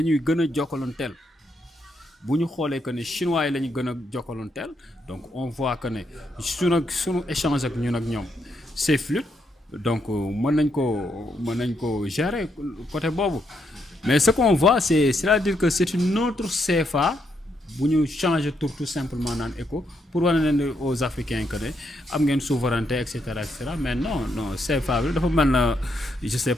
ñuy gën a jokkalonteel bu ñu xoolee que ne chinois yi la ñu gën a jokkalonteel donc on voit que ne sunu échange ak ñun ak ñoom c'est fluide donc mën nañ ko gérer côté boobu mais ce qu'on voit c'est-à-dire que c'est une autre CFA bu ñu changer tout simplement naan éco pour wane ne aux Africains que ne am ngeen souveraineté et cetera mais non CFA bi dafa mel na je sais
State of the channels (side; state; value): both; normal; correlation 0.77